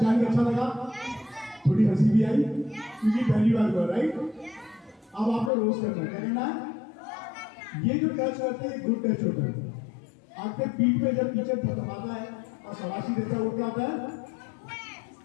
के अच्छा लगा, थोड़ी हंसी भी आई क्योंकि पहली बार हुआ, राइट? अब आपको रोज करना है, क्या करना है? ये जो टच करते हैं गुड टच होता है। आपके पीठ पे जब टीचर थपथपाता है और शाबाशी देता है वो क्या होता है?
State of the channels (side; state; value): right; drops out; at 5.5 s